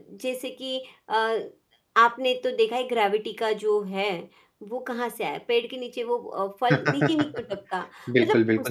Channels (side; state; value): both; identical; correlation 1.00